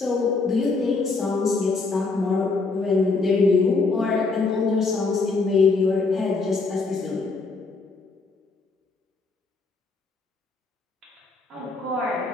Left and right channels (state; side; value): quieter; right; 3.9 dB